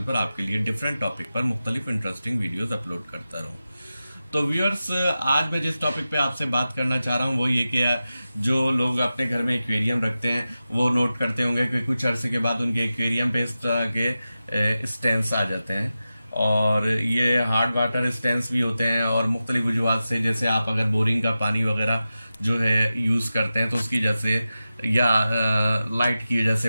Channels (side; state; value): both; inverted; correlation -0.93